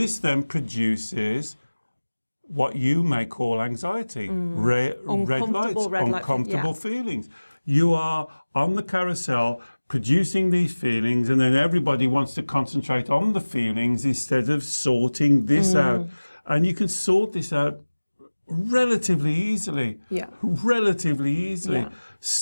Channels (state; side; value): inverted; both; correlation -1.00